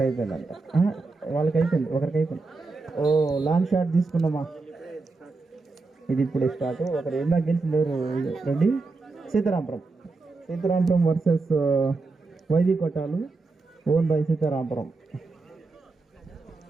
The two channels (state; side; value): quieter; left; 3.8 dB